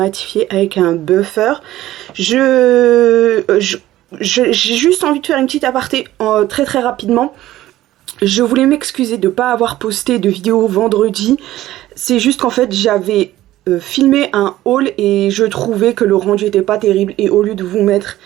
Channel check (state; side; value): quieter; left; 14.9 dB